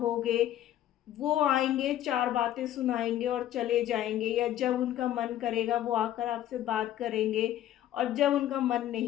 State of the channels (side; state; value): right; quieter; 12.3 dB